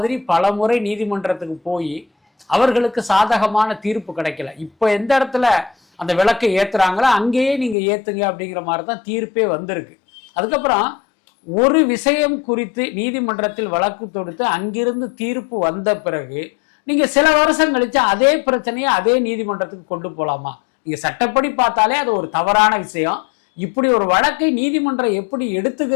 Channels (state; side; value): drops out; right; at 7.8 s